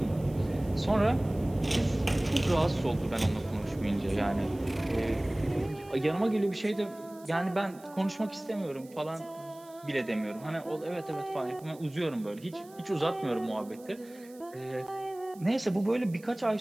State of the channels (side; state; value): right; noise; hiss, 24 dB below the sound